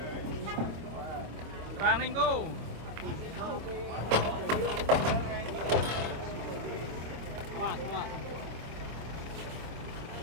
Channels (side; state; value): left; late; 25 ms